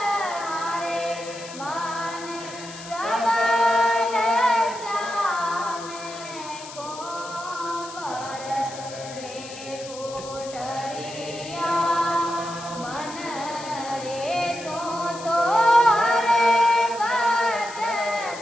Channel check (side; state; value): left; noise; hiss, 14 dB below the sound